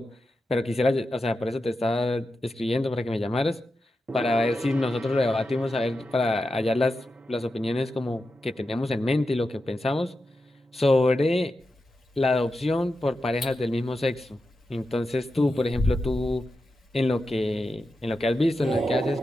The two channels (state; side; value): normal; both; correlation 0.90